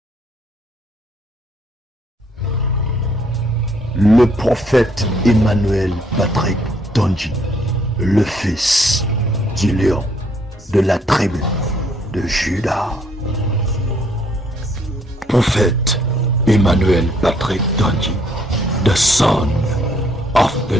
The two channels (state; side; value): normal; both; correlation 0.67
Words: Le prophète Emmanuel Patrick Tonji, le fils du lion de la tribu de Juda. Prophète Emmanuel Patrick Tonji, the son of the